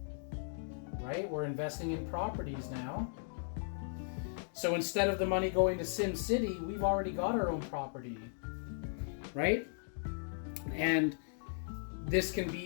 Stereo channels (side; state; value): right; silent; digital silence